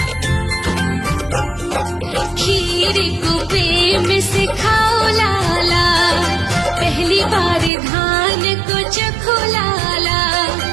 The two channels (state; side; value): drops out; left; at 7.7 s